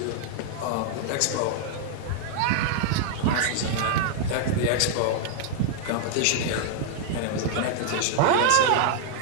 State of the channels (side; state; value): both; different; correlation -0.01